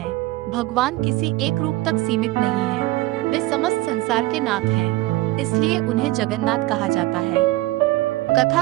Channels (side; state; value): left; quieter; 18.6 dB